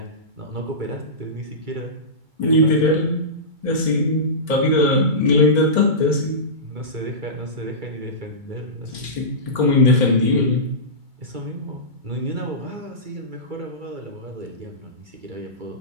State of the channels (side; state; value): left; late; 2.3 ms